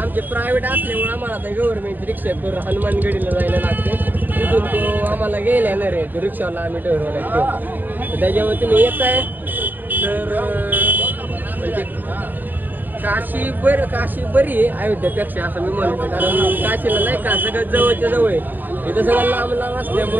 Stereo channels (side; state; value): left; late; 0.089 ms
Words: प्रायव्हेट असल्यामुळे आम्हाला आता गव्हर्नमेंटची रिक्षा करून हनुमानगडीला जायला लागते. तिथून तो आम्हाला गेला येणार आहे, तो रिक्षावाला आम्ही ठरवला तो. तर त्याच्यामुळे तुम्ही येत आहे तर म्हणजे काशी बरी आहे अयोध्येपेक्षा असं मी म्हणतो. कारण काशीला नाही का सगळं जवळच्या जवळ आहे. इथं सगळं लांब